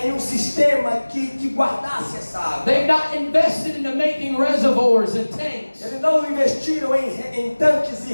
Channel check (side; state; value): both; inverted; correlation -1.00